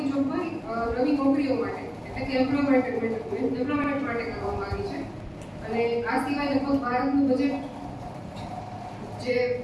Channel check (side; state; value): both; identical; correlation 1.00